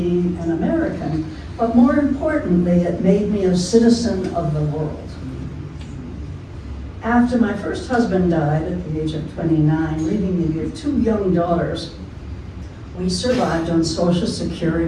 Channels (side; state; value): both; identical; correlation 1.00